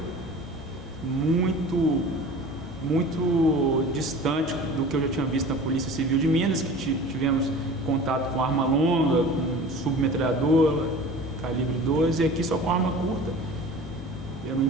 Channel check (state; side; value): normal; both; correlation 0.40